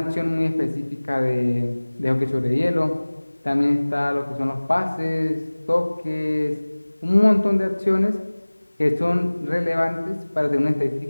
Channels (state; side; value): inverted; both; correlation -1.00